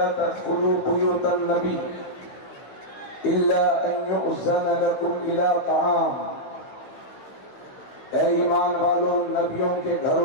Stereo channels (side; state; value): right; late; 16 ms